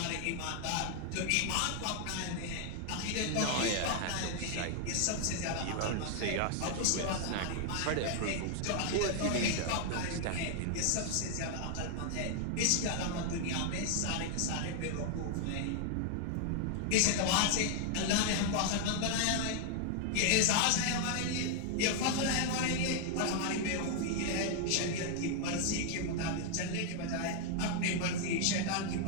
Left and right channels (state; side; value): different; both; correlation 0.00